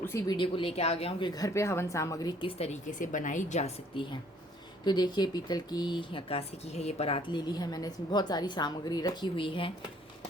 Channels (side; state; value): both; normal; correlation 0.61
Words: वीडियो को लेके आ गया हूँ कि घर पे हवन सामग्री किस तरीके से बनाई जा सकती है। तो देखिए, पीतल की या कांसे की है ये परात ले ली है मैंने। इसमें बहुत सारी सामग्री रखी हुई है,